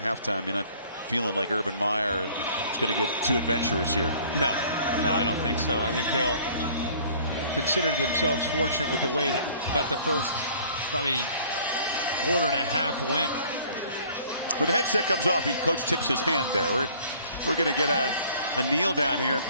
You're not feeling like Urban Meyer is going to get too adventurous here. No, I don't think so. I think they'll consider themselves fortunate with the way that about the first probably quarter and a half went. When the headset comes off, coach tips his hand there. We're going to get a kneel down here, and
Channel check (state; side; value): inverted; both; correlation -0.53